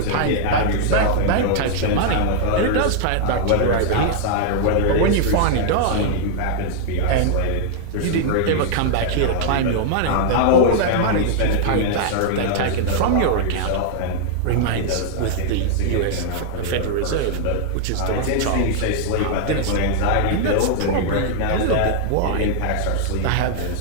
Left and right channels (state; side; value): different; both; correlation -0.01